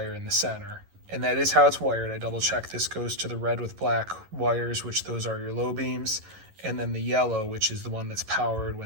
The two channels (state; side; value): late; left; 11 ms